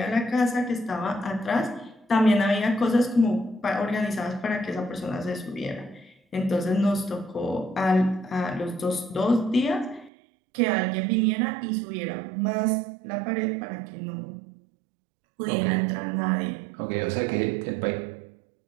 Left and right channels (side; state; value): left; drops out; at 10.1 s